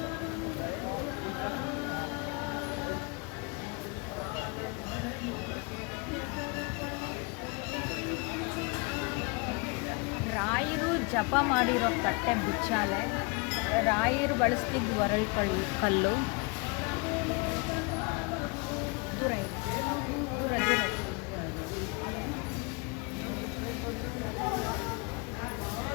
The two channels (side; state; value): right; quieter; 30.5 dB